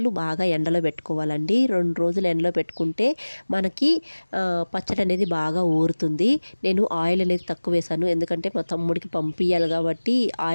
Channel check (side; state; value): both; inverted; correlation -1.00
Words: బాగా ఎండలో పెట్టుకోవాలండి. 2 రోజులు ఎండలో పెట్టుకుంటే మనకి పచ్చడి అనేది బాగా ఊరుతుంది. నేను ఆయిల్ అనేది తక్కువ వేసాను, ఎందుకంటే మా తమ్ముడికి పంపించాలి కాబట్టి